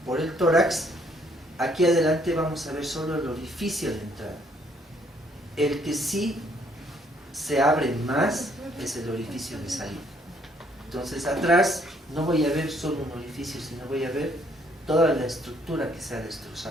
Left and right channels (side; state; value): both; normal; correlation 0.66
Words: por el tórax, aquí adelante vamos a ver solo el orificio de entrada. El que sí se abre más es el orificio de salida. Entonces atrás no voy a ver solo un orificio, sino voy a ver toda la estructura que se ha